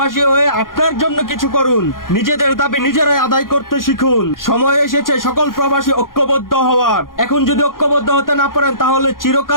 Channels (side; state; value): right; late; 0.91 ms